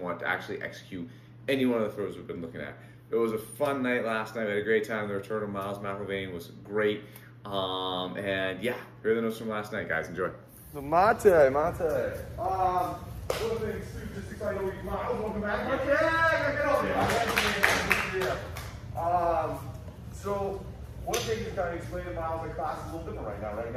want to actually execute any one of the throws we've been looking at. It was a fun night last night. We had a great time. The return of Miles McIlvain was great. And yeah, here are the notes from last night, guys. Enjoy. So Mate. One of the things too, just excited to Miles, welcome back. Mate, get over here. So one thing is kind of explaining Miles, the class is a little different right now. Right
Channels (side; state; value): both; identical; correlation 1.00